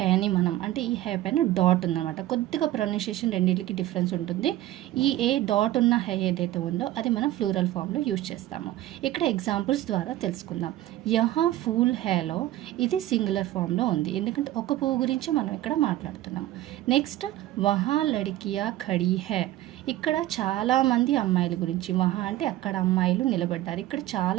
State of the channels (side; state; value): left; quieter; 14.8 dB